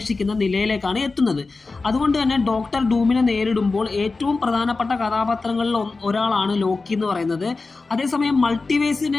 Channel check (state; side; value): quieter; right; 3.8 dB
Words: നിലയിലേക്കാണ് എത്തുന്നത്. അതുകൊണ്ട് തന്നെ ഡോക്ടർ ഡൂമിനെ നേരിടുമ്പോൾ ഏറ്റവും പ്രധാനപ്പെട്ട കഥാപാത്രങ്ങളിൽ ഒരാളാണ് ലോക്കി എന്ന് പറയുന്നത്. അതേസമയം